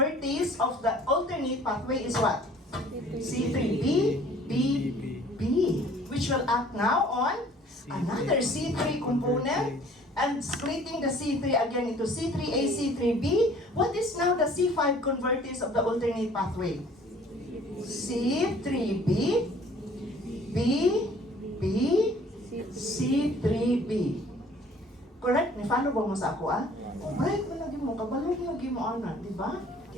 of the alternate pathway is what? C3B, BB. Which will act now on another C3 component and splitting the C3 again into C3A, C3B. What is now the C5 convertase of the alternate pathway? C3B, BB, C3B. Correct? Ni-follow ba mo sa ako, ah? Right, malagi mo, kabalo lagi mo, ana, di ba?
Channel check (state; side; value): normal; both; correlation 0.53